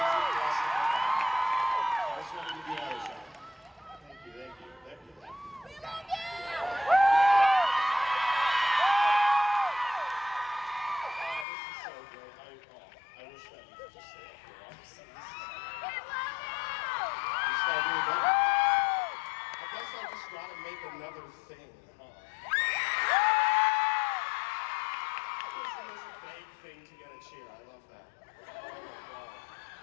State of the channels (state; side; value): drops out; right; at 11.5 s